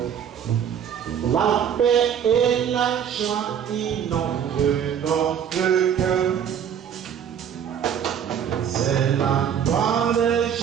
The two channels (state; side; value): quieter; left; 8.6 dB